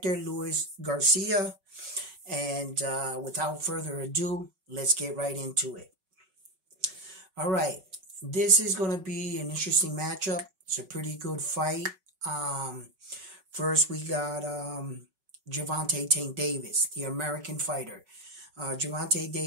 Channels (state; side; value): late; left; 5.3 ms